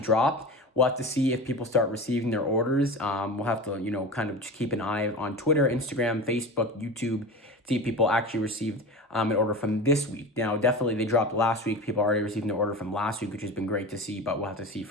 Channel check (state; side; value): normal; both; correlation 0.30